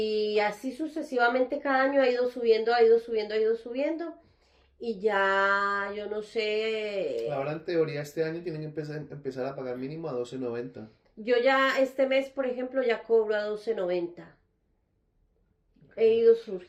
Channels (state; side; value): identical; both; correlation 1.00